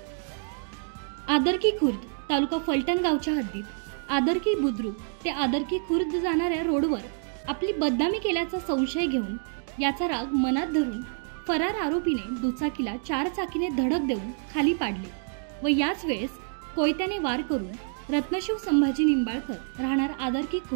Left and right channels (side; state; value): left; silent; 58 dB below the other